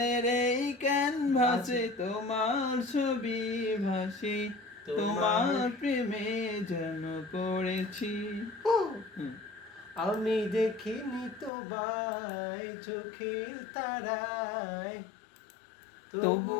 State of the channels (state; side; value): drops out; right; at 11.5 s